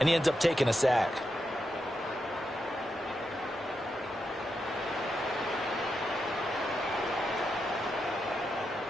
he ends up taking a sack.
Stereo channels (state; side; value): normal; both; correlation 0.85